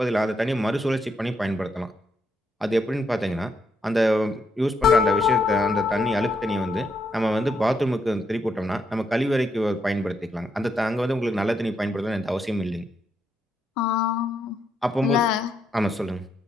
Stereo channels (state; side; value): normal; both; correlation 0.78